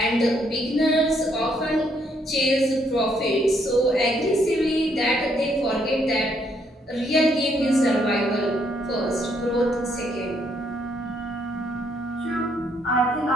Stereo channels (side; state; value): both; normal; correlation 0.71